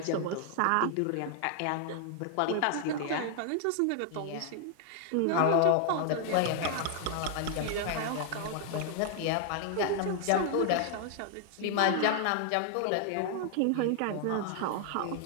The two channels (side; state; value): both; different; correlation 0.00